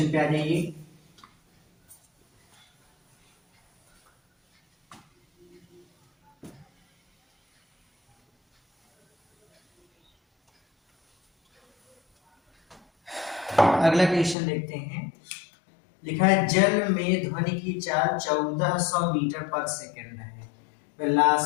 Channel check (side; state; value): right; drops out; at 14.4 s